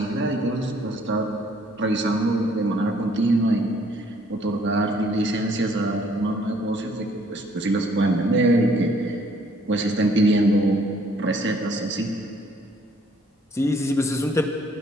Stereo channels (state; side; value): normal; both; correlation 0.62